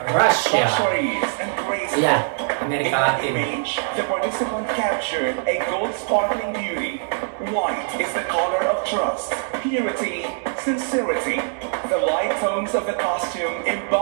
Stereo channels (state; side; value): silent; left; digital silence